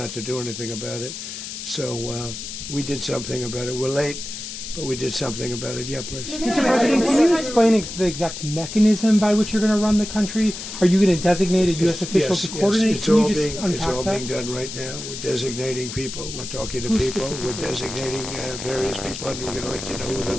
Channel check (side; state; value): left; noise; hiss, 8 dB below the sound